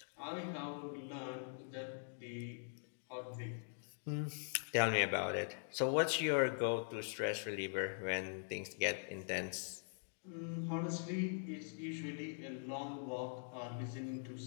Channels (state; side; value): silent; right; digital silence